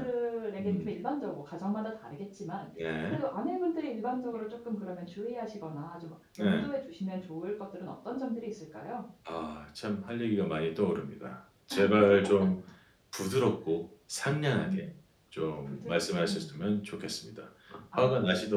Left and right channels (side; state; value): both; identical; correlation 1.00